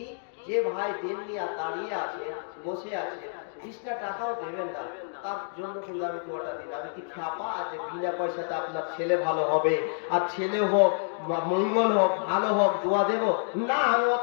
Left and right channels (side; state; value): right; silent; digital silence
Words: যে ভাই দেন নিয়ে দাঁড়িয়ে আছে, বসে আছে, 20টা টাকাও দেবেন না, তার জন্য কিন্তু আমি দোয়াটা দিই না। আমি কি খ্যাপা আছে বিনা পয়সাতে আপনার ছেলে ভালো হবে, আর ছেলে হোক মঙ্গল হোক ভালো হোক দোয়া দেব না? আমি